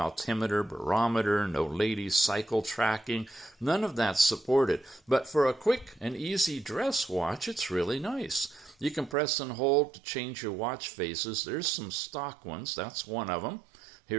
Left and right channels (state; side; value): drops out; left; at 9.2 s